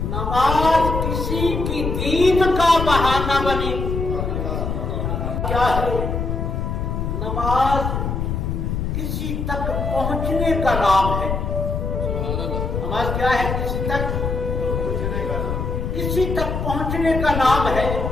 نماز کسی کی دید کا بہانہ بنی۔ کیا ہے نماز؟ کسی تک پہنچنے کا نام ہے۔ نماز کیا ہے؟ کسی تک پہنچنے کا نام ہے،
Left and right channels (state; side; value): noise; left; rumble, 2 dB below the sound